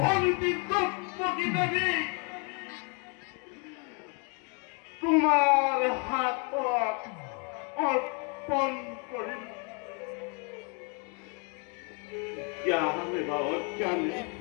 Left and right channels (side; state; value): right; quieter; 35.4 dB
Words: দ্রৌপদী দেবী তোমার হাত অর্পণ করিল। জ্ঞানে বা অজ্ঞানে